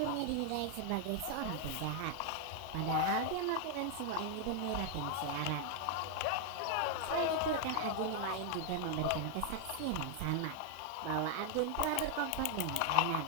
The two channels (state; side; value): different; both; correlation 0.00